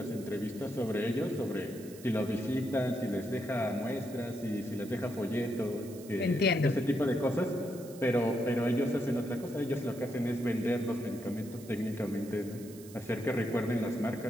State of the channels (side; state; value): right; noise; hiss, 19 dB below the sound